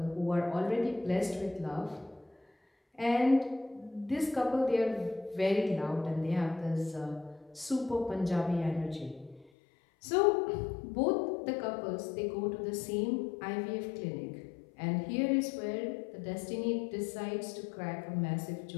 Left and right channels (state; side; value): drops out; right; at 9.5 s